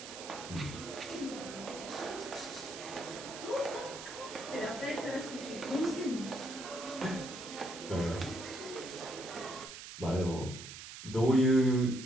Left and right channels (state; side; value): noise; right; hiss, 11 dB below the sound